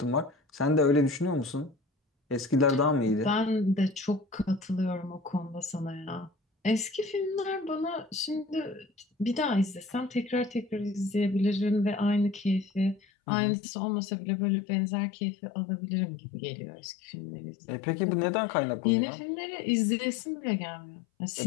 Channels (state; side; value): drops out; right; at 13.0 s